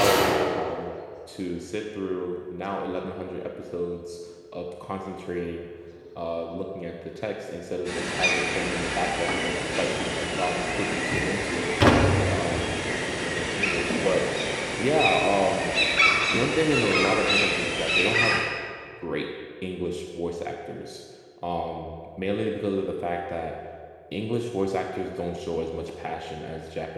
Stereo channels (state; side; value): identical; both; correlation 1.00